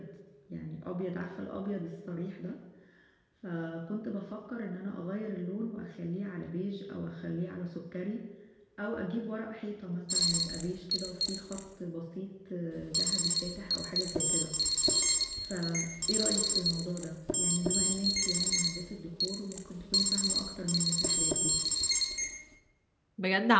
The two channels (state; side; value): identical; both; correlation 1.00